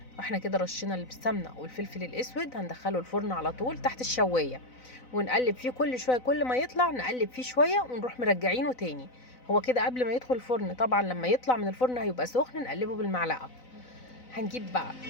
احنا كده رشينا السمنه والفلفل الاسود، هندخله الفرن على طول تحت الشوايه، ونقلب فيه كل شويه، كل ما يطلع نقلب فيه شويه ونروح مرجعينه تاني. هو كده قبل ما يدخل الفرن، طبعا لما يطلع من الفرن هيبقى سخن نقلبه بالمعلقه. هنجيب بقى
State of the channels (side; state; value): right; late; 4.0 ms